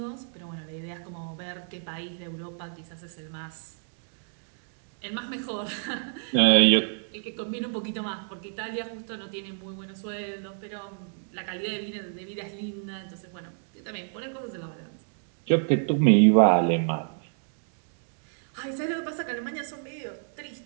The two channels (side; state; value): left; silent; digital silence